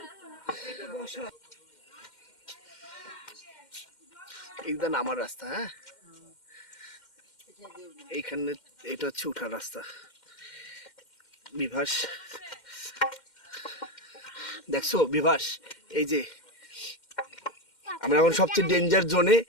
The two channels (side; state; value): right; late; 2.1 ms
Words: এইটা নামার রাস্তা। হ্যাঁ এইখানে এটা হচ্ছে উঠার রাস্তা। বিভাস দেখছো বিভাস, এই যে আমরা এখন সবচেয়ে ডেঞ্জার জোনে।